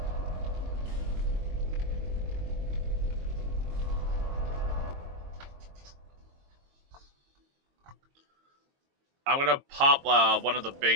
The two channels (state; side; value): late; left; 22 ms